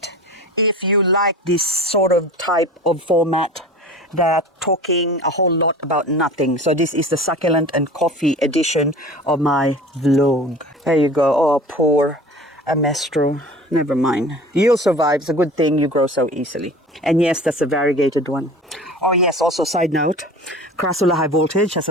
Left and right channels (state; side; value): normal; both; correlation 0.39